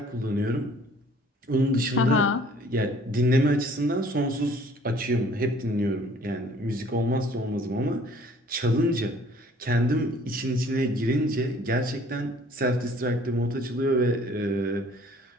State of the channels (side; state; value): both; normal; correlation 0.55